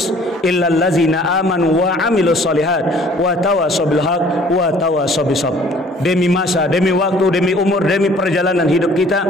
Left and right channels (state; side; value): normal; both; correlation 0.54